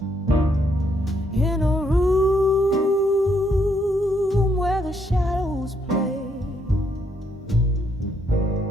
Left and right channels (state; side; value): normal; both; correlation 0.74